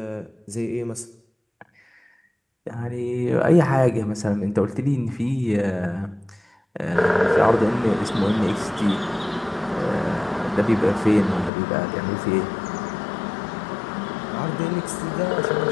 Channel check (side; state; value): right; drops out; at 11.5 s